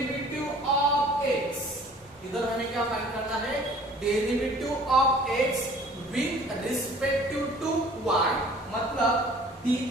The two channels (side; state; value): both; normal; correlation 0.51